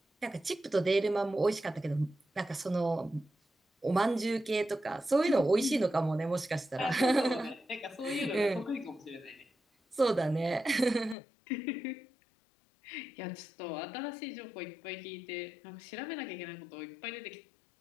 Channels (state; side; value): drops out; right; at 11.2 s